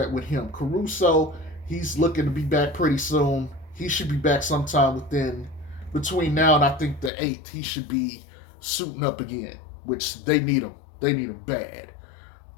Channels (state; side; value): drops out; right; at 7.1 s